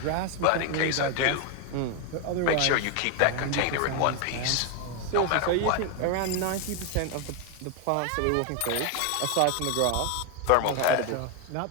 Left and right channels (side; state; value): both; different; correlation 0.01